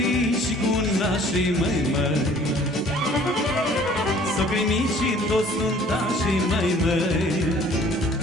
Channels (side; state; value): both; normal; correlation 0.54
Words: și cu nașii, măi. Socrii mici și toți nuntașii, măi.